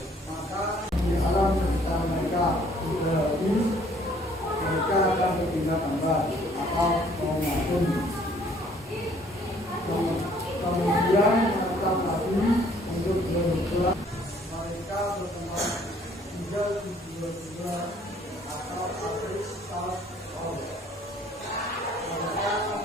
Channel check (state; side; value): normal; both; correlation 0.60